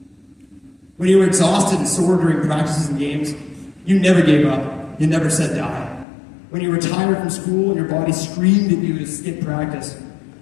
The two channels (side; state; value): right; drops out; at 6.1 s